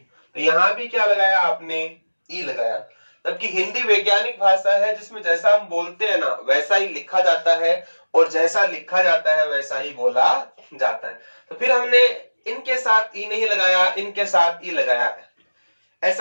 तो यहां भी क्या लगाया आपने, ई लगाया। जबकि हिंदी वैज्ञानिक भाषा है जिसमें जैसा हम बोलते हैं ना वैसा ही लिखा जाता है और जैसा लिखा जाता है वैसा ही बोला जाता है। तो फिर हमने इनके साथ ई नहीं लगाया, इनके साथ ई लगाया।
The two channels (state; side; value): inverted; both; correlation -1.00